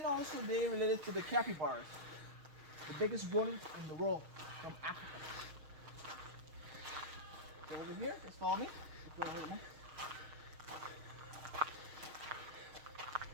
also they related to the capybaras, the biggest rodents in the world from Africa. So over here, just follow me. Just go ahead, man.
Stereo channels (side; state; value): left; late; 6.5 ms